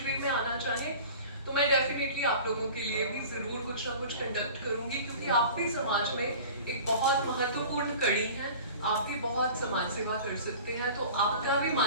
में आना चाहें तो मैं डेफिनेटली आप लोगों के लिए भी जरूर कुछ ना कुछ कंडक्ट करूंगी, क्योंकि आप भी समाज में एक बहुत महत्वपूर्ण कड़ी हैं, आप भी बहुत समाज सेवा कर सकते हैं, तो आपका भी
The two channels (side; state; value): both; inverted; correlation -0.41